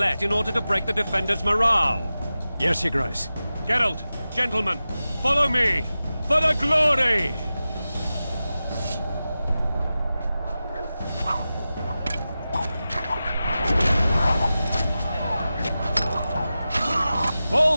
in order to break the defenders' morale. Yes, Your Grace. Geralt, gentlemen, follow me! For the glory!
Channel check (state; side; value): inverted; both; correlation -0.94